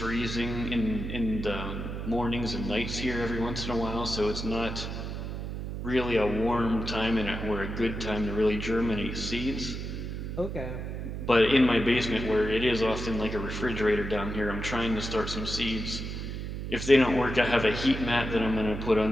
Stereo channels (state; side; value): noise; right; hum, 5 dB below the sound